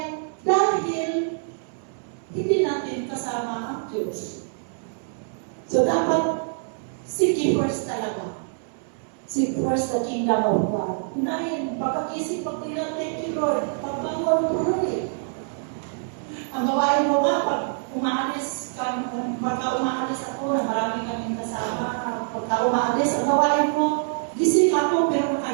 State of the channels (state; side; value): silent; left; 62 dB below the other